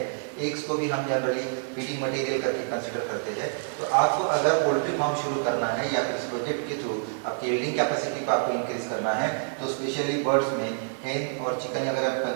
एग्स को भी हम जनरली फीडिंग मटेरियल करके कंसिडर करते हैं। तो आपको अगर पोल्ट्री फार्म शुरू करना है या फिर इस प्रोजेक्ट के थ्रू आपकी यील्डिंग कैपेसिटी को आपको इंक्रीज करना है, तो स्पेशली बर्ड्स में हेन और चिकन अगर आप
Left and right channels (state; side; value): silent; left; 60 dB below the other